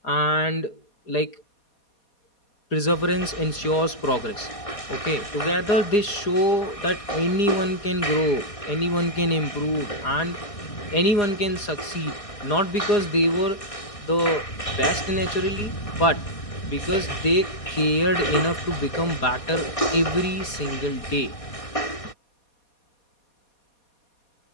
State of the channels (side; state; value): right; late; 4.9 ms